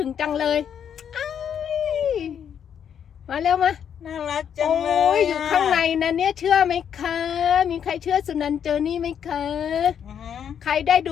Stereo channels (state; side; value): quieter; right; 8.4 dB